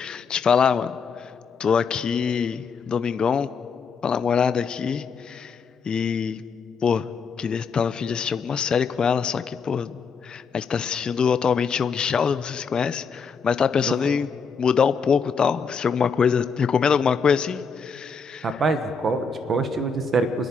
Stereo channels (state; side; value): quieter; right; 5.2 dB